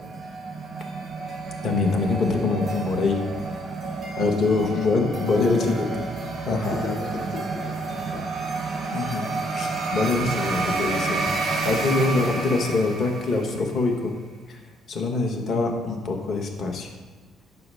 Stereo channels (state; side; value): normal; both; correlation 0.68